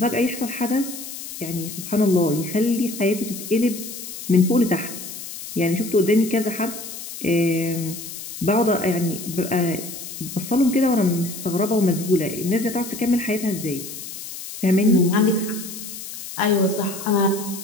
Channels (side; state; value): left; noise; hiss, 10 dB below the sound